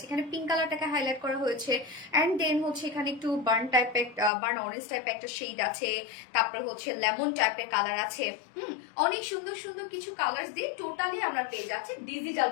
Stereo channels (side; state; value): right; drops out; at 4.3 s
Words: এখানে পিঙ্ক কালারটাকে হাইলাইট করা হয়েছে, অ্যান্ড দেন হচ্ছে এখানে একটু বার্ন অরেঞ্জ টাইপের একটা শেড আছে, তারপর হচ্ছে লেমন টাইপের কালার আছে। অনেক সুন্দর সুন্দর কিছু কালার দিয়ে টোটালি আমরা পেয়ে যাচ্ছি ডিজিটাল